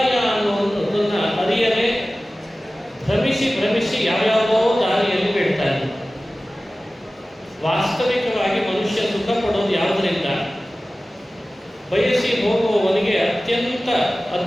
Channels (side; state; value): both; normal; correlation 0.96